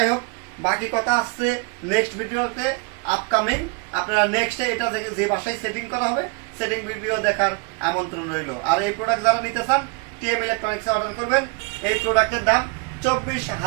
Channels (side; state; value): left; quieter; 33.2 dB